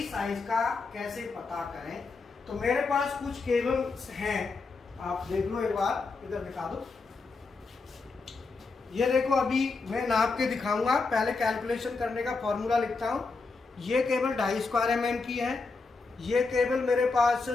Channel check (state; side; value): quieter; right; 4.1 dB